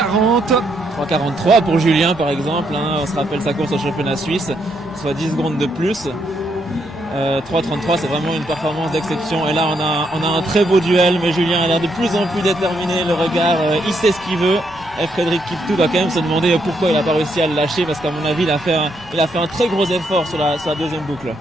3,43 pour Julien par exemple, hein. On se rappelle sa course au championnat suisse, soit 10 secondes de plus. 3,33 c'est vraiment une performance d'exception et là on a un très beau duel, mais Julien a l'air de plus en plus déterminé, le regard, il sait ce qu'il veut. Et Frédéric Kiptou va quand même se demander pourquoi il n'a pas réussi à le lâcher, parce qu'à mon avis il a fait un très gros effort sur la deuxième boucle.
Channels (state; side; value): normal; both; correlation 0.76